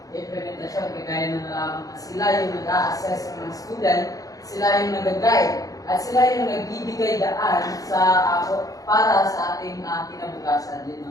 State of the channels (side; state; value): right; late; 0.17 ms